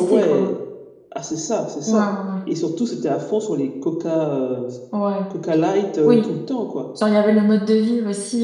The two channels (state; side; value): identical; both; correlation 1.00